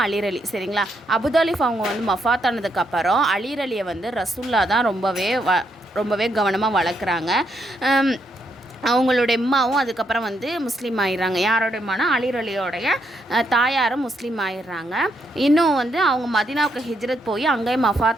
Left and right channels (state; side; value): normal; both; correlation 0.77